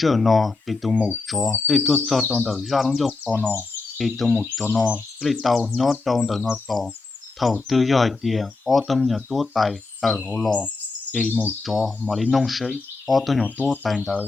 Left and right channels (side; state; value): right; quieter; 3.7 dB